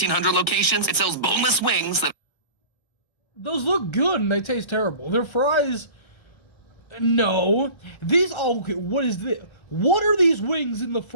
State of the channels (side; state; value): right; late; 1.5 ms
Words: locations, it sells boneless wings that Those look good and they taste terrible. Their fries... No. These... Oh, okay, what is this? What are these wings in the